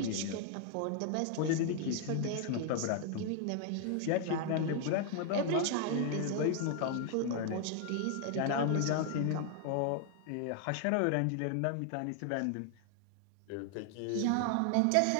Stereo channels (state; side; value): different; both; correlation 0.00